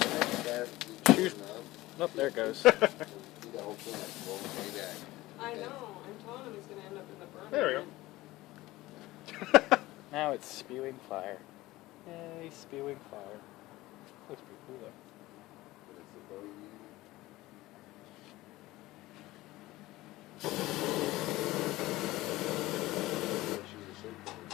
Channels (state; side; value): quieter; right; 18.2 dB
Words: Shoot. Nope, there it goes. Do the whole thing like roll way back. I know. I'm telling him he's going to end up in the burn. There we go. Now it's spewing fire. Yay, spewing fire. Looks pretty cool though. What is the bow you use?